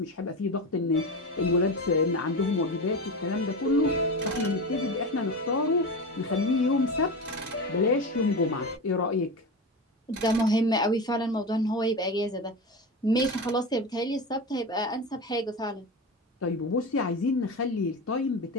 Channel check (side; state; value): both; normal; correlation 0.23